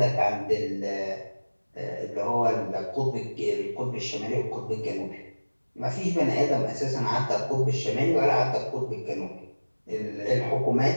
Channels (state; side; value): inverted; both; correlation -1.00